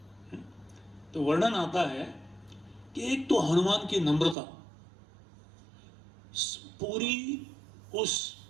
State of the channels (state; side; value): drops out; left; at 4.4 s